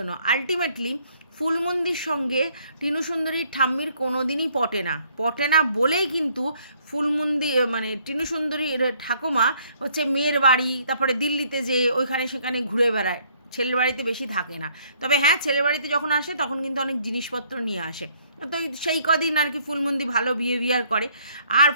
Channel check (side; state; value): both; inverted; correlation -0.64